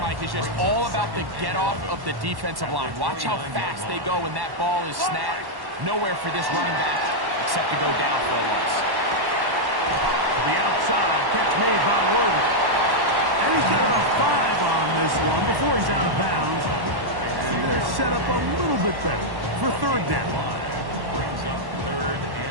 is just all about the get-off of the defensive line. Watch how fast they go when that ball is snapped. Nowhere for this running back except to go down for a loss. To the outside. Catch made by Worthy. And he's got about 5 on this one before he's out of bounds. And they're set up a little bit better for third down. Brings up third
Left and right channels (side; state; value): left; late; 1.1 ms